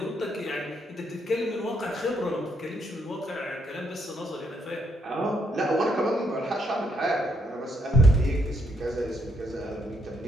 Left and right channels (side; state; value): both; normal; correlation 0.75